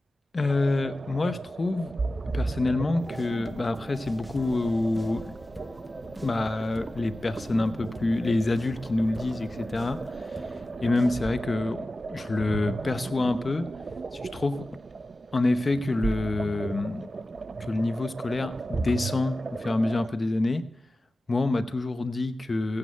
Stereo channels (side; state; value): both; normal; correlation 0.95